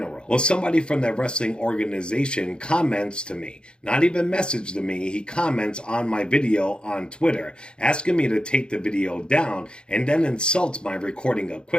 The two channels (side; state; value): right; late; 0.051 ms